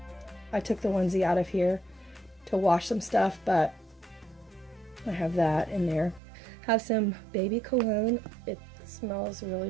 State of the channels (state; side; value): drops out; left; at 6.2 s